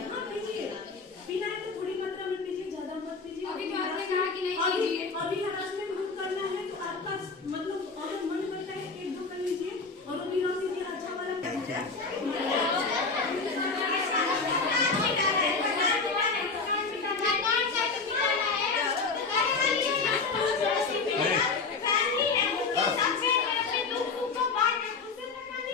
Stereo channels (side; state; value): right; quieter; 4.4 dB